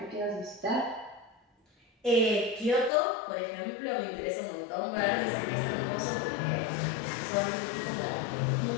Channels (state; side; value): drops out; right; at 2.9 s